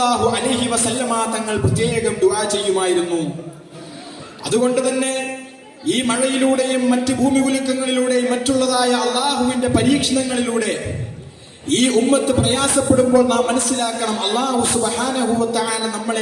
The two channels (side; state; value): both; identical; correlation 1.00